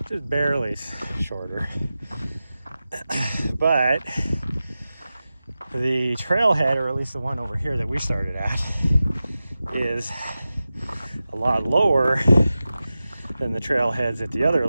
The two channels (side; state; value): both; inverted; correlation -0.94